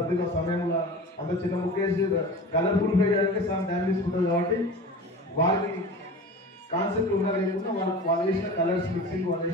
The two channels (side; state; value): both; normal; correlation 0.35